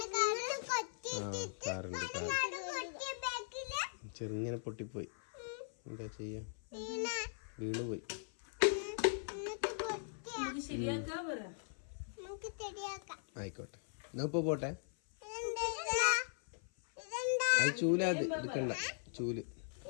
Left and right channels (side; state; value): right; silent; 51 dB below the other